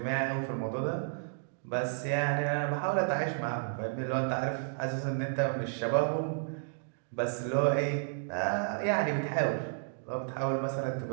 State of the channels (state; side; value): silent; left; digital silence